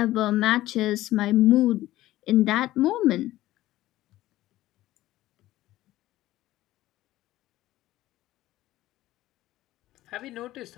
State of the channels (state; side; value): quieter; right; 15.6 dB